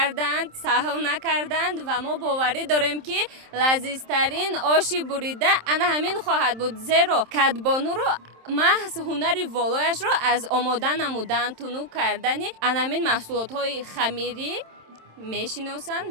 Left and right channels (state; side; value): late; left; 27 ms